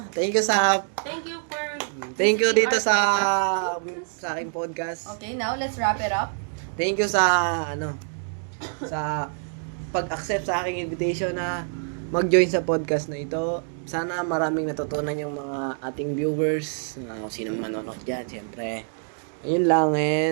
Thank you Thank you dito sa aking podcast. Okay, now let's wrap it up. Thank you sa sa pag-accept sa aking invitation na mag-join sa podcast na ito. Sana maraming natutunan yung mga ating viewers, kung sinong manonood dyan, siyempre. Ayun lang,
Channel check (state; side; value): silent; left; digital silence